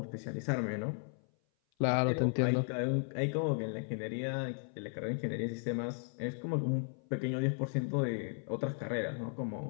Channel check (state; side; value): silent; right; 54 dB below the other